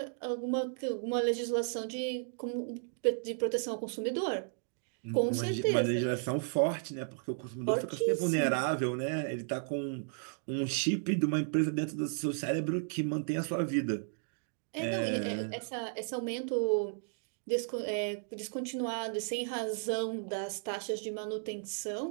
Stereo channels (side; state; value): left; silent; digital silence